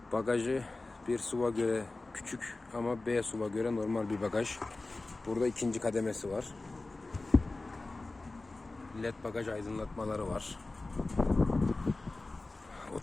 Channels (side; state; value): right; quieter; 3.2 dB